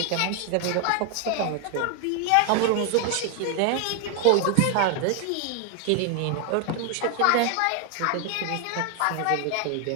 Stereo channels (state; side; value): different; both; correlation 0.00